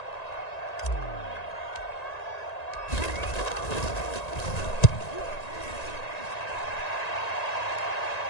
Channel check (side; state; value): right; late; 1.9 ms